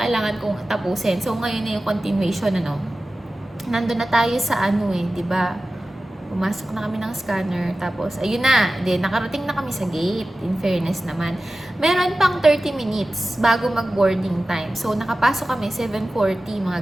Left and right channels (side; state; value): both; normal; correlation 0.95